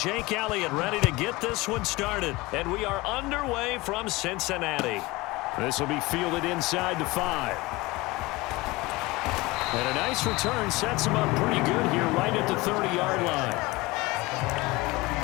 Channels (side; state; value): right; quieter; 21.6 dB